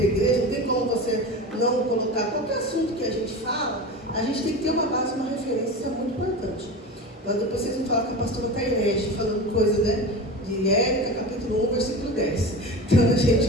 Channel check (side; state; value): both; normal; correlation 0.29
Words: igreja, não tem como você não colocar qualquer assunto que a gente fala. A gente tem que ter uma base, uma referência, isso é muito importante. Mas depois vocês vão falar que a pastora está herege, falando coisa, né? De Érica, capítulo 1, versículo 10. Então, a gente